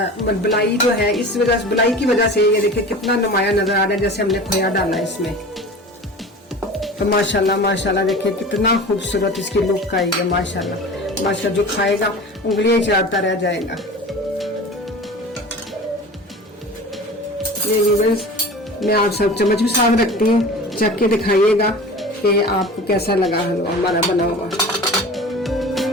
बलाई जो है, इस वजह से, बलाई की वजह से ये देखें कितना नुमाया नजर आ रहा है जैसे हमने खोया डाला है इसमें। तो माशाल्लाह माशाल्लाह देखिए कितना खूबसूरत इसकी लुक आई है। माशाल्लाह माशाल्लाह, जो खाएगा उंगलियां चाटता रह जाएगा। ये व्यूअर्स, मैं आप सब चम्मच भी साथ रखती हूँ, चख के दिखाइएगा कि आपको कैसा लगा हलवा हमारा बना हुआ।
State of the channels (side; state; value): both; normal; correlation 0.37